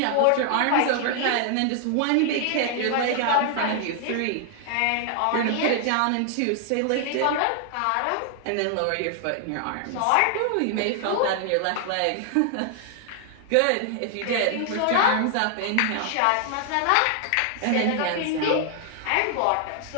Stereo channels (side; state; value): both; different; correlation 0.00